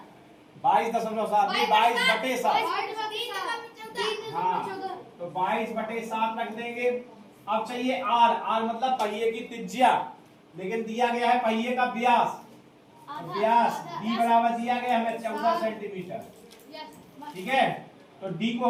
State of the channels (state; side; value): identical; both; correlation 1.00